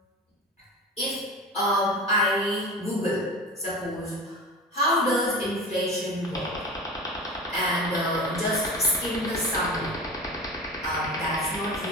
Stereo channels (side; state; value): both; normal; correlation 0.31